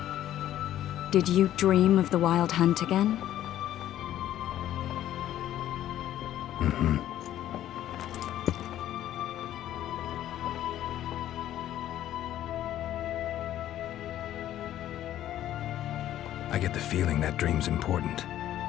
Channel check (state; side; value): quieter; right; 12.4 dB